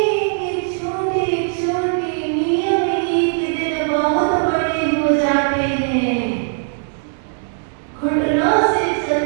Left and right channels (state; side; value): silent; left; 66 dB below the other